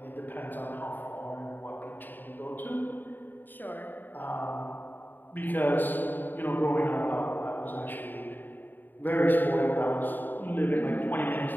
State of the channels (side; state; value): right; late; 0.090 ms